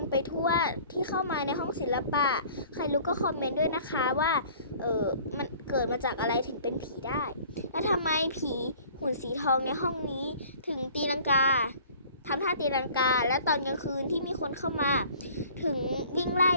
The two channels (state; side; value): inverted; both; correlation -0.50